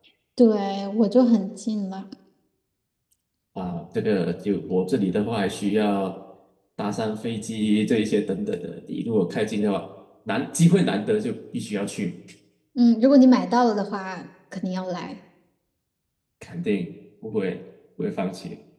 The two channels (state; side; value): identical; both; correlation 1.00